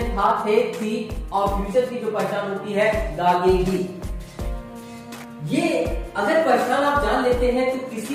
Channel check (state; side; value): identical; both; correlation 1.00